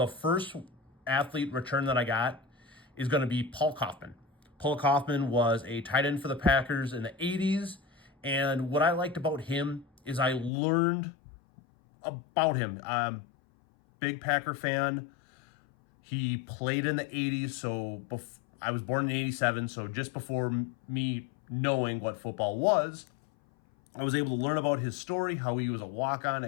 first athlete return that I got is going to be Paul Kaufman. Paul Kaufman was a tight end for the Packers in the 80s. And what I liked about him is I learned about him. Big Packer fan. He played in the 80s. So I was born in 87. So just before me knowing what football was, I was able to learn about his story, how he was a walk-on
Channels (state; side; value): drops out; right; at 10.5 s